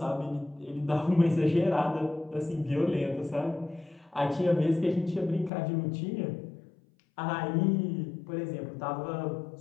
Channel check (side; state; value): right; drops out; at 5.5 s